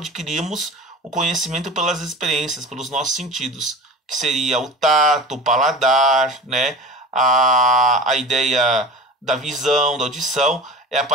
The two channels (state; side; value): normal; both; correlation 0.36